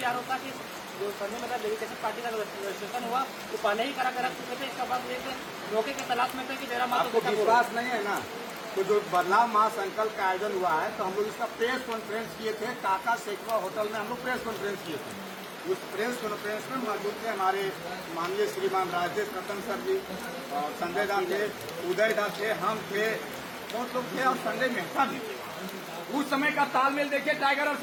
आरोप था कि जो संजय मेहता डेलीगेशन पार्टी का रजिस्ट्रेशन हुआ वो पहले ही करा रख चुके थे। इसका बाद एक मौके के तलाश में थे कि जयराम मातो को विश्वास नहीं है ना, तो जो बदलाव महासंकल्प का आयोजन हुआ है तो हम लोग इसका प्रेस कॉन्फ्रेंस किए थे, काका सेकवा होटल में हम लोग प्रेस कॉन्फ्रेंस किए थे। उस प्रेस कॉन्फ्रेंस में मौजूद थे हमारे माननीय श्रीमान राजेश रतन सर जी और संजय दा थे, उदय दा थे, हम थे, बहुत लोग थे और संजय मेहता भी थे। उस समय का तालमेल देखिए टाइगर और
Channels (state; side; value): identical; both; correlation 1.00